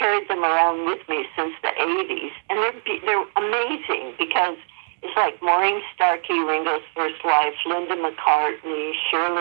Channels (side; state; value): left; silent; digital silence